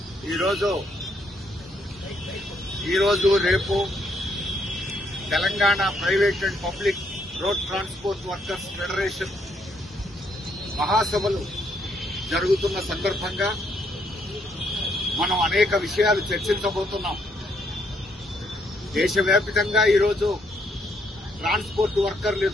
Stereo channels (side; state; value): both; normal; correlation 0.72